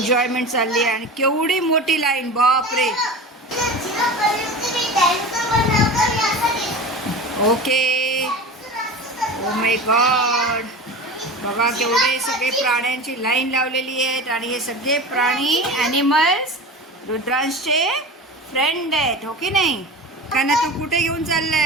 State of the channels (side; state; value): both; normal; correlation 0.31